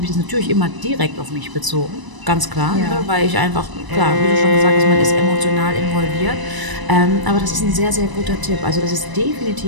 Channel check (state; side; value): late; left; 1.0 ms